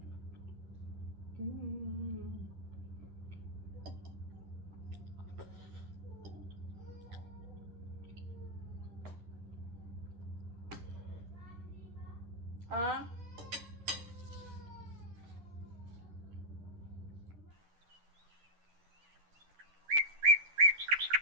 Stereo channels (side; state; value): left; late; 10 ms